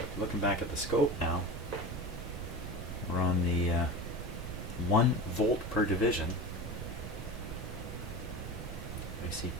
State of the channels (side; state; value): right; noise; rumble, 7 dB below the sound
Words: looking back at the scope now, we're on the 1 volt per division. I see